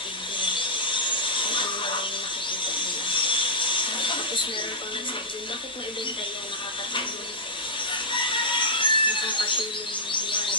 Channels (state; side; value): normal; both; correlation -0.09